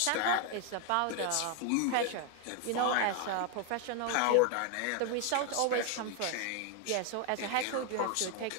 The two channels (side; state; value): both; different; correlation 0.01